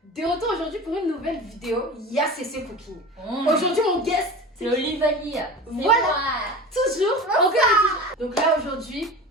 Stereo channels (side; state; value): both; normal; correlation 0.33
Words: De retour aujourd'hui pour une nouvelle vidéo. Ya c'est Cooking. Aujourd'hui mon guest, c'est Olivanie. Voilà. Toujours. Donc là aujourd'hui,